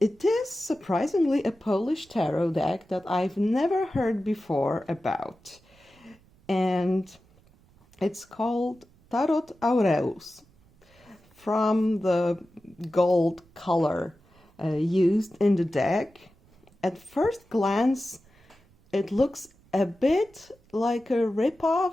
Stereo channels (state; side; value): noise; right; rumble, 30 dB below the sound